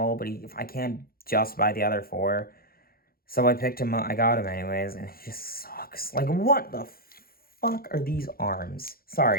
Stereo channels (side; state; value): right; late; 0.43 ms